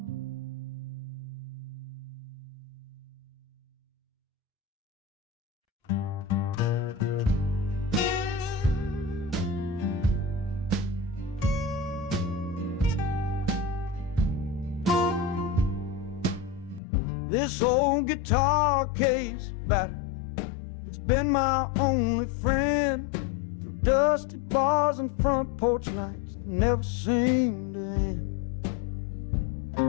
This old guitar case battered, it's been my only friend through dusty bars and front porch nights that never seem to end.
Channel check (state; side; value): drops out; right; at 16.8 s